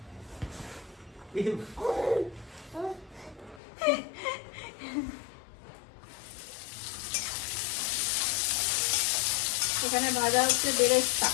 এখানে ভাজা হচ্ছে বেরেস্তা,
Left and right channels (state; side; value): drops out; right; at 3.6 s